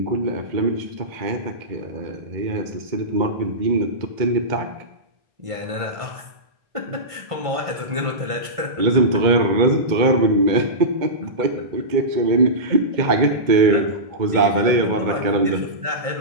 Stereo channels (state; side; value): late; left; 1.5 ms